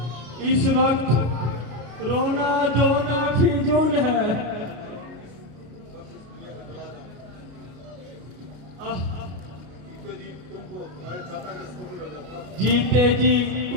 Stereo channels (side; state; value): left; late; 33 ms